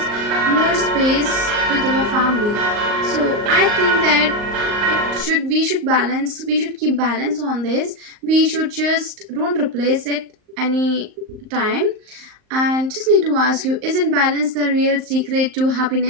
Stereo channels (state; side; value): late; left; 38 ms